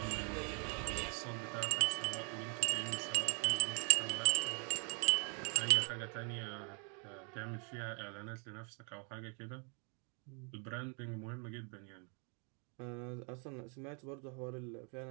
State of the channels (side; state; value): left; quieter; 38.0 dB